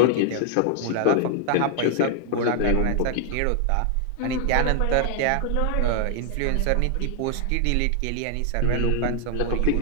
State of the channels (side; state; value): both; different; correlation 0.00